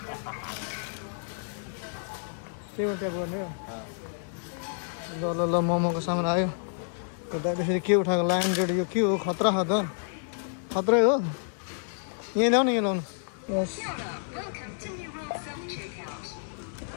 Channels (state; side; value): silent; right; 57 dB below the other